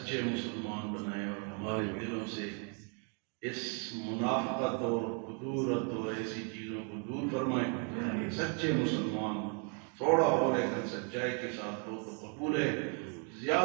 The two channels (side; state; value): left; quieter; 39.8 dB